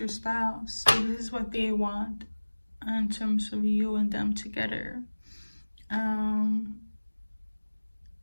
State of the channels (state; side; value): inverted; both; correlation -1.00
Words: spouse. So this is what they want in terms of you and them together.